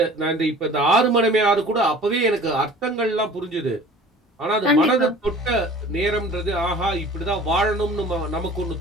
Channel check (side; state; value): both; normal; correlation 0.45